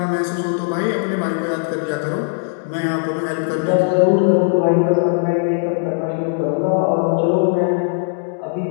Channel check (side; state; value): right; silent; 67 dB below the other